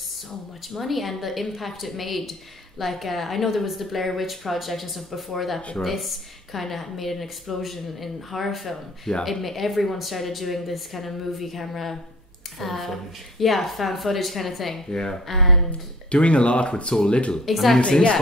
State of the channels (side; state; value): both; normal; correlation 0.48